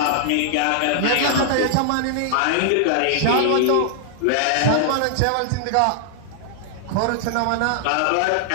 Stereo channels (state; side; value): different; both; correlation -0.01